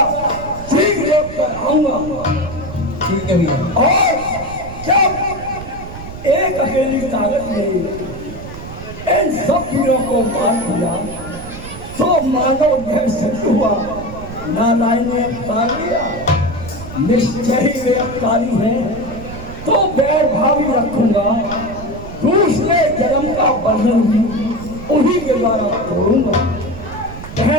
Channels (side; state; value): right; noise; rumble, 12 dB below the sound